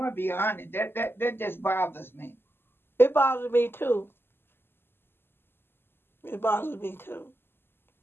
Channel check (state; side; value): late; right; 0.11 ms